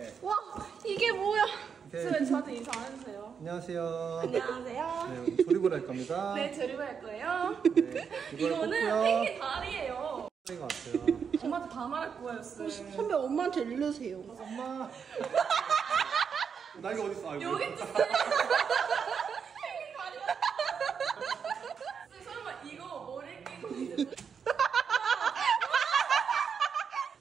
와 이게 뭐야? 쌤 저한테 인사 안 해주세요. 안녕하세요. 안녕하세요. 네, 오늘 조립을 할 겁니다. 네, 조립을 할 거예요. 네, 이거는 펭귄 다리예요. 것 같아요. 엄마한테 다 말할 거예요, 쌤. 선배 엄마한테 일르세요. 엄마. 날개 어디 있어? 아이고. 여기 있지, 쌤. 펭귄 다리야. 쌤, 설마 이거 머리에 끼고 이제.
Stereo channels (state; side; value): quieter; left; 6.6 dB